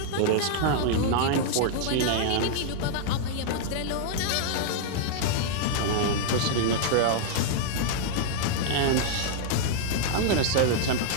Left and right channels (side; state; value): both; different; correlation -0.01